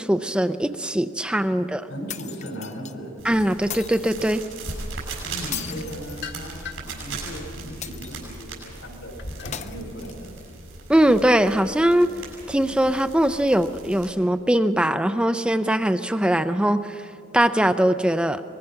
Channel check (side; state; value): both; normal; correlation 0.89